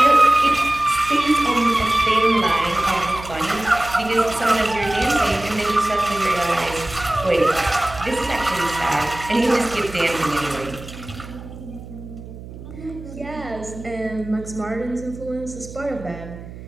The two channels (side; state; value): right; noise; hum, 14 dB below the sound